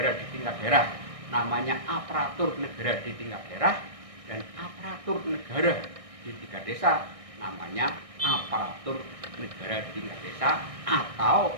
di tingkat daerah namanya aparatur negara di tingkat daerah, dan aparatur negara di tingkat desa namanya aparatur negara di tingkat desa,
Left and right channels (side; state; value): left; late; 1.6 ms